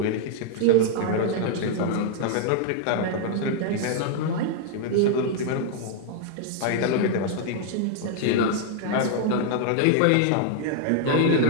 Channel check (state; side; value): different; both; correlation 0.00